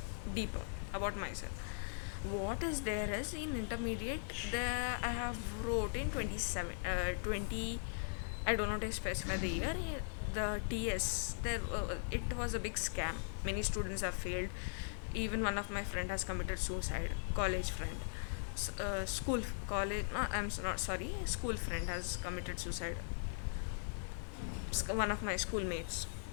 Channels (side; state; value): right; silent; 51 dB below the other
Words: deeper about myself. What is there is, in intermediate, there I have wrote in 20, I don't know to specify the year, the TS, there it was a big scam. Many students have failed. Even one of my friend has committed suicide, college friend. School college no I'm not sorry school friend has committed suicide. One of my schoolmates,